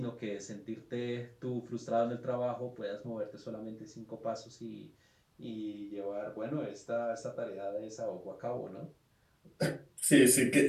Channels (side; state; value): both; identical; correlation 1.00